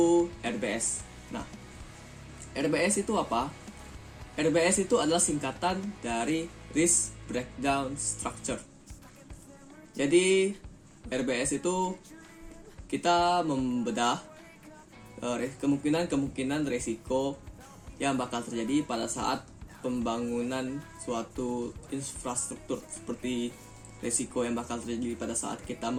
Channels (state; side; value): identical; both; correlation 1.00